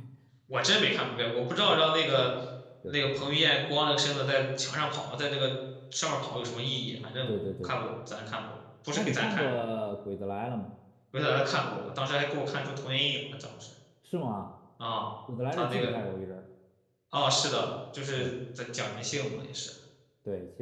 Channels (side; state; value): both; identical; correlation 1.00